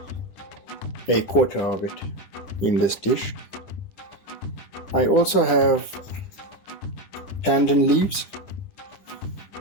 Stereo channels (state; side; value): late; right; 9.9 ms